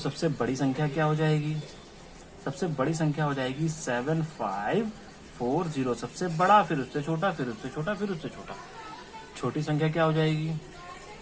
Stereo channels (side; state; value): both; identical; correlation 1.00